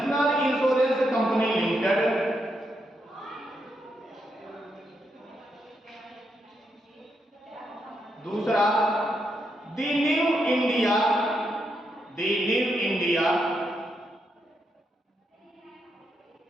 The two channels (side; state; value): both; normal; correlation 0.81